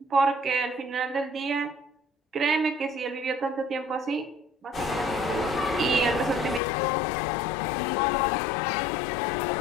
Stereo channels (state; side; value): drops out; right; at 6.6 s